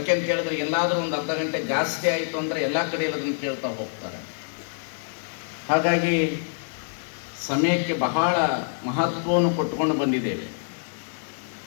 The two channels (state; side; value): silent; right; digital silence